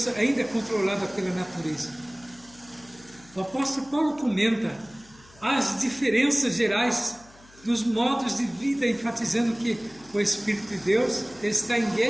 ainda controladas pela natureza. O apóstolo Paulo comenta as diferenças gerais dos modos de vida, enfatizando que o Espírito de Deus está em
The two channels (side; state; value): left; noise; hum, 25 dB below the sound